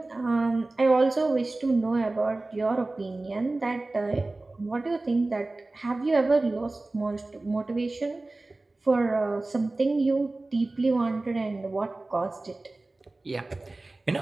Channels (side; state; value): left; quieter; 3.1 dB